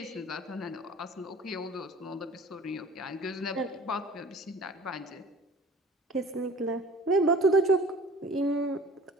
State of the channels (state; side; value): normal; both; correlation 0.45